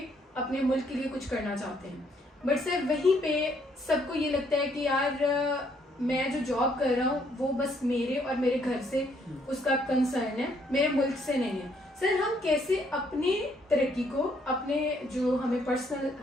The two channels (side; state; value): both; normal; correlation 0.69